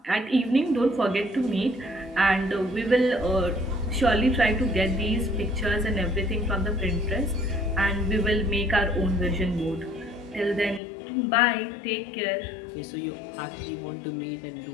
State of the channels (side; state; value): right; drops out; at 10.8 s